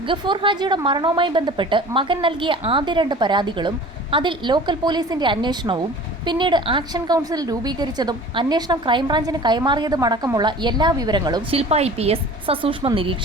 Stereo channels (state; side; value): normal; both; correlation 0.42